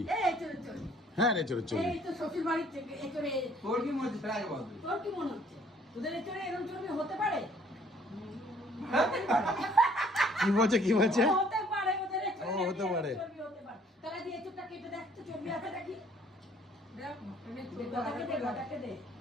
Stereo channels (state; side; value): normal; both; correlation 0.60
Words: এই চর্বি হ্যাঁ এচড়ের চর্বি। এই তো শ্বশুর বাড়ির থেকে এচড়ে তোর কি মনে হচ্ছে আগে বল তোর কি মনে হচ্ছে তোদের এচড়ে এরকম চর্বি হতে পারে কি বলছে হতে পারে ওদের এচড়ে ও, হতে পারে। চর্বি হতে পারে তাহলে দিয়ে এচড়টা কেটে দেখ তো চর্বি আছে নাকি দেখ গটাকে দে